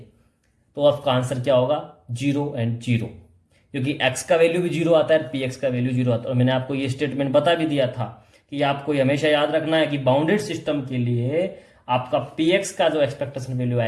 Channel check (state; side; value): identical; both; correlation 1.00